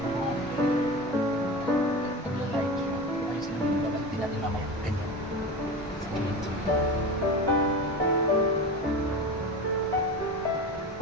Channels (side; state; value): both; normal; correlation 0.28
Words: Natin mamaya ganyan.